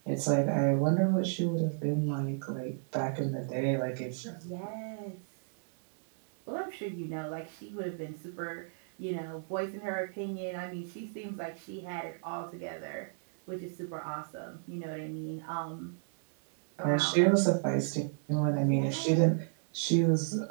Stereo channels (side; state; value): left; silent; digital silence